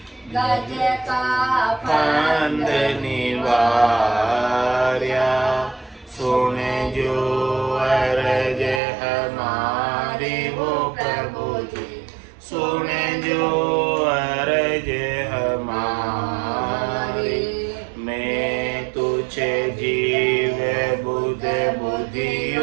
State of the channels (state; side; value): drops out; left; at 8.8 s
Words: गज का फंद निवार्य सुन जो अरज हमारी वो प्रभु जी सुन जो अरज हमारी मैं तुझे जीव बुध